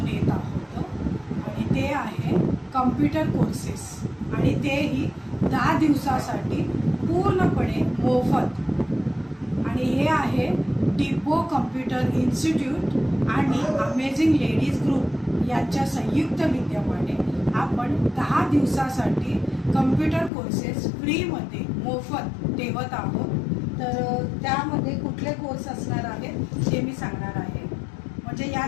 येत आहोत आणि ते आहे कम्प्युटर कोर्सेस आणि तेही 10 दिवसासाठी पूर्णपणे मोफत. आणि हे आहे डिपो कम्प्युटर इन्स्टिट्यूट आणि अमेझिंग लेडीज ग्रुप यांच्या संयुक्त विद्यमाने आपण 10 दिवसासाठी कम्प्युटर कोर्सेस फ्रीमध्ये मोफत ठेवत आहोत. तर त्यामध्ये कुठले कोर्स असणार आहेत हे मी सांगणार आहे. म्हणजे या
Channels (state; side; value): drops out; right; at 20.3 s